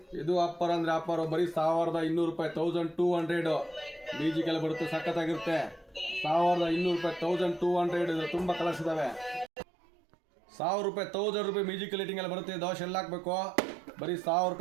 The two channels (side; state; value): left; drops out; at 9.5 s